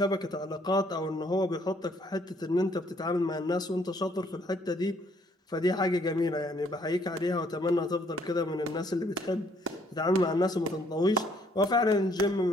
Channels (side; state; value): both; normal; correlation 0.65